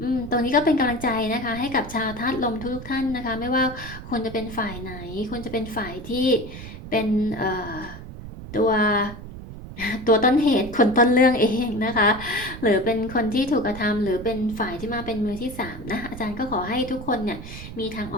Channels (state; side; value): noise; right; rumble, 12 dB below the sound